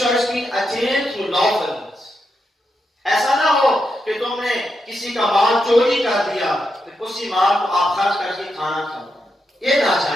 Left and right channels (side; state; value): both; normal; correlation 0.84